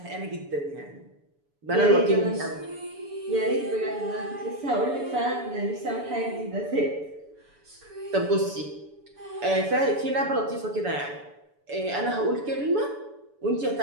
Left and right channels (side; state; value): left; late; 7.0 ms